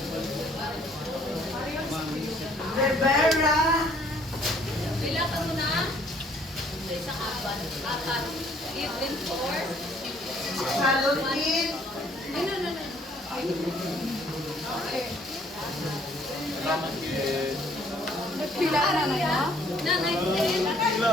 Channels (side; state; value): both; normal; correlation 0.61